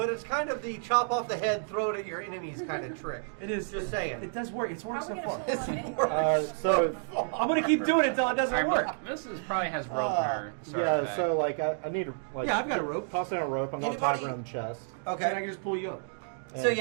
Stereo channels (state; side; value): silent; left; digital silence